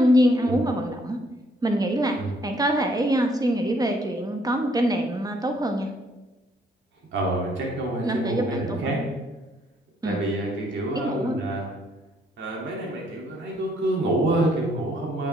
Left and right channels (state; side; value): normal; both; correlation 0.67